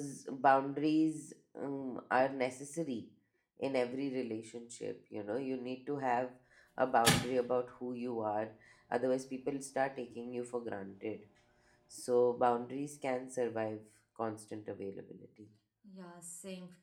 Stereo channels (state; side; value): identical; both; correlation 1.00